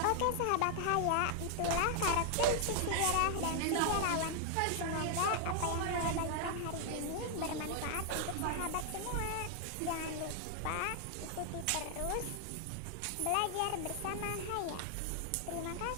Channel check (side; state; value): both; different; correlation 0.00